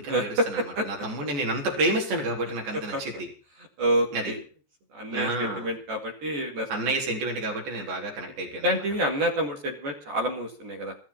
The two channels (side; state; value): left; late; 14 ms